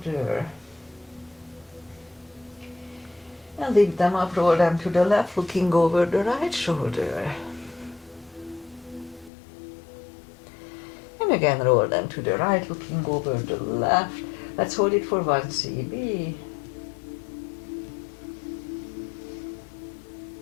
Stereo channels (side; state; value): right; drops out; at 9.3 s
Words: And lift them up, roll them to the left, looking over the right shoulder. And again roll them to the right, looking over the left. Let's hold it for 1 CB.